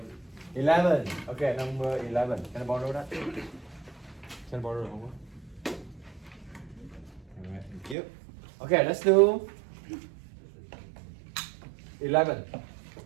11. Okay, number 11. Can I borrow that? Can I borrow the homework? Alright, thank you. Okay, let's do 11.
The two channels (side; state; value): left; drops out; at 8.0 s